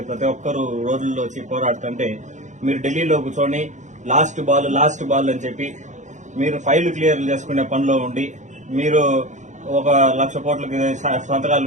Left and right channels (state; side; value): late; left; 0.35 ms